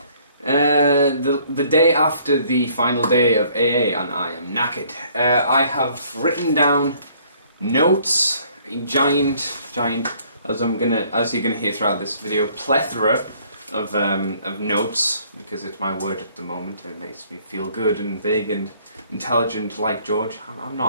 the day after the final day of AA and I am knackered. I have written down notes, a giant, as you're gonna hear throughout this video, plethora of notes, because it's my word at the moment. It makes me feel good and big and intelligent like George. I'm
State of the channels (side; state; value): both; inverted; correlation -0.61